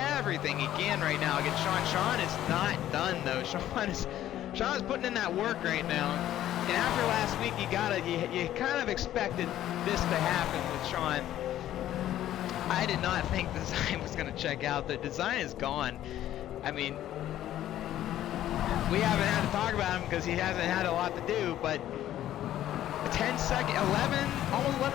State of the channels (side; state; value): right; quieter; 12.6 dB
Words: he can right now against Sean. Sean is not done, though. Sean is putting in that work right now. And after last week, you kind of expected this to happen with Sean. I did not think Design was going to check out. The Design is gone. I mean, we haven't had to talk about him because he hasn't had a lot to do, but a 10-second,